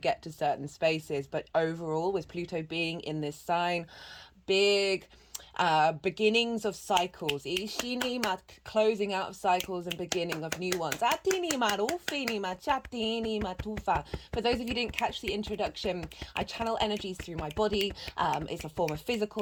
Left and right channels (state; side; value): identical; both; correlation 1.00